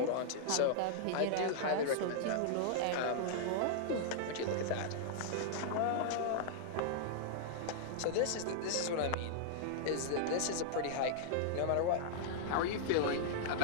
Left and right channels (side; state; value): both; different; correlation -0.01